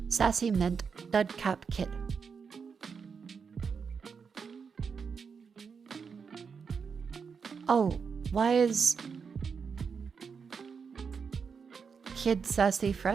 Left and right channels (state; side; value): quieter; left; 5.9 dB